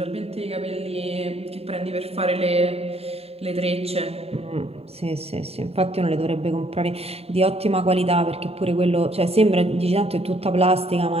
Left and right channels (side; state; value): left; late; 0.29 ms